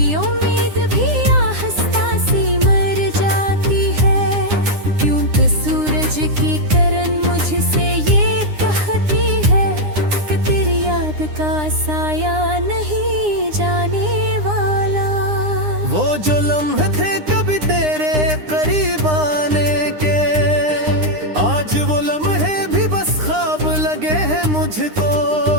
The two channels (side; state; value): left; late; 9.8 ms